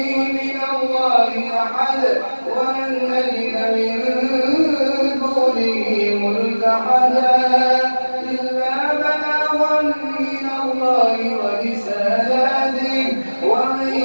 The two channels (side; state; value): both; inverted; correlation -1.00